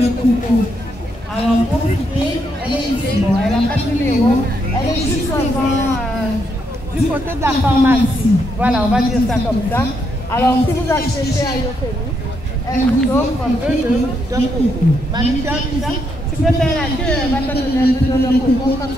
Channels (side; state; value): both; normal; correlation 0.77